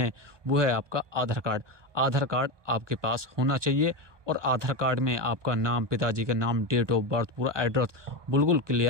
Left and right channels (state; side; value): late; left; 1.2 ms